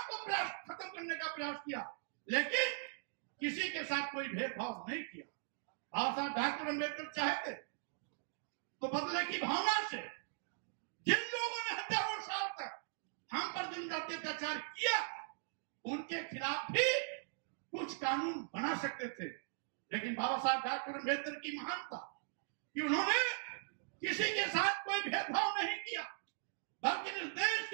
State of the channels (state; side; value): silent; left; digital silence